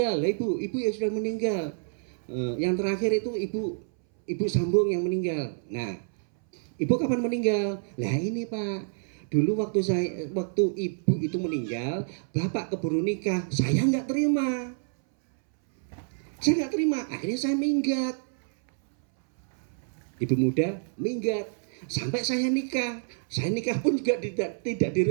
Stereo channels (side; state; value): left; silent; 59 dB below the other